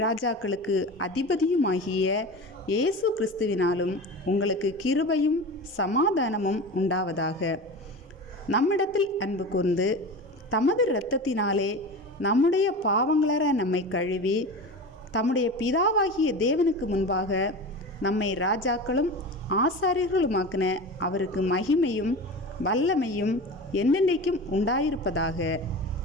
ராஜாக்களுக்கு அதிபதியுமாகிய இயேசு கிறிஸ்துவினாலும் உங்களுக்கு கிருபையும் சமாதானமும் உண்டாவதாக. நம்மிடத்தில் அன்பு கூர்ந்து தமது இரத்தத்தினாலே நம்முடைய பாவங்களற நம்மை கழுவி தம்முடைய பிதாவாகிய தேவனுக்கு முன்பாக நம்மை ராஜாக்களும் ஆசாரியர்களுமாக்கின அவருக்கு மகிமையும் வல்லமையும் என்னென்னைக்கும் உண்டாயிருப்பதாக.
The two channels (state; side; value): normal; both; correlation 0.30